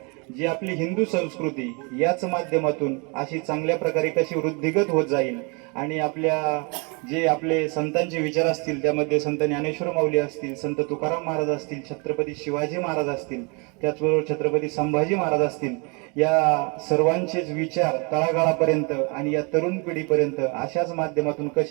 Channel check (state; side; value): quieter; left; 32.0 dB